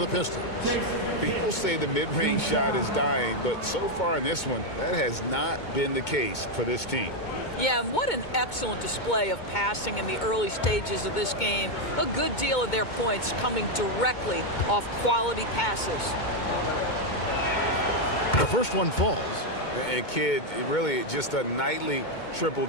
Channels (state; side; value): late; right; 2.2 ms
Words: Pistons. People say the mid-range shot is dying, but so far in this one, that has not been the case for this team. Yeah, and what an excellent display of passing in the early stages of this game. A good deal of their points coming directly off quality passes. The first one falls. And Kidd, really just a nightly